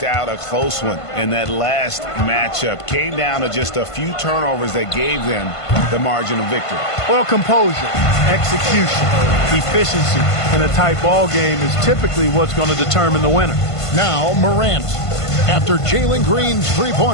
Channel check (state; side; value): late; right; 1.5 ms